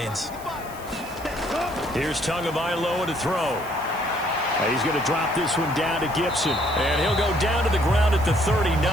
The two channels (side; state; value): right; noise; hiss, 18 dB below the sound